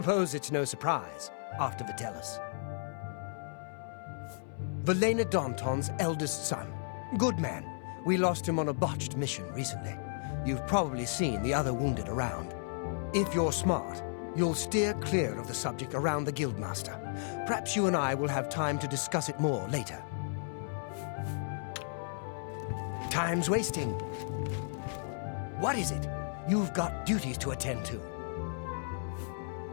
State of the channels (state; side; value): silent; right; 55 dB below the other